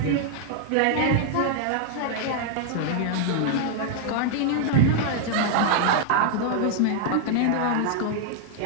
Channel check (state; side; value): different; both; correlation 0.00